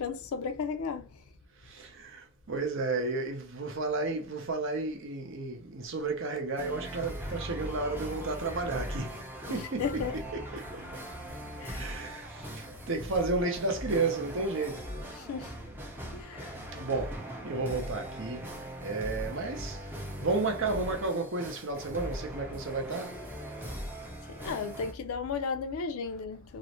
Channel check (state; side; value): normal; both; correlation 0.02